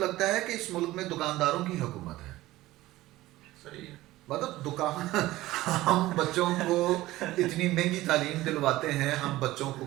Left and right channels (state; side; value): quieter; left; 17.0 dB